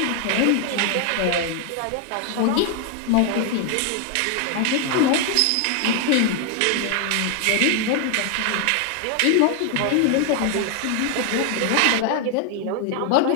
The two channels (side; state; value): both; different; correlation 0.00